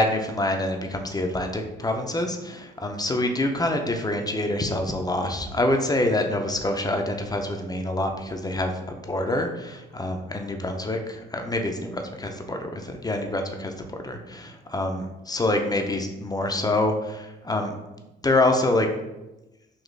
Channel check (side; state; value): both; normal; correlation 0.58